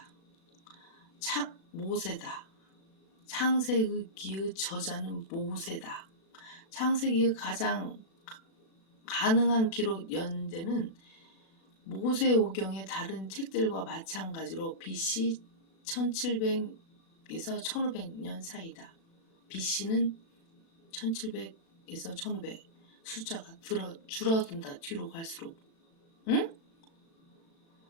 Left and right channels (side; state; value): right; late; 36 ms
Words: 모세다. 창세기의 저자는 모세다. 창세기의 가장 가능한 기록 연대는 모세오경의 다른 책들과 마찬가지로 BC 1700에서 1500년 사이다. BC는 1700에서 1500. 숫자가 줄어든다. 뒤로 갈수록. 응?